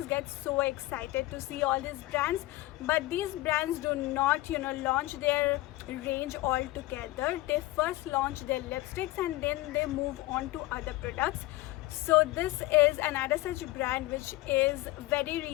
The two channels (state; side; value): quieter; right; 18.5 dB